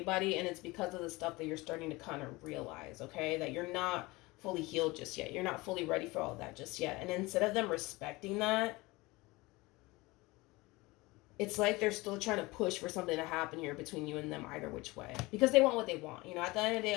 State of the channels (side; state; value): right; quieter; 22.3 dB